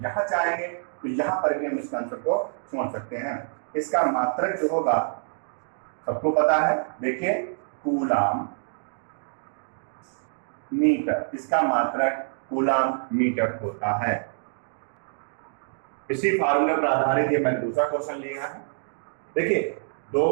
यहाँ चाहेंगे तो यहाँ पर भी हम इसका आंसर को समझ सकते हैं। इसका मात्रक जो होगा सबको पता है, देखिए कूलम मीटर, इसका मात्रक कूलम मीटर होता है। इसी फार्मूले पर आधारित ये मैंने दूसरा क्वेश्चन लिया है। देखिए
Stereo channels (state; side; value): silent; left; digital silence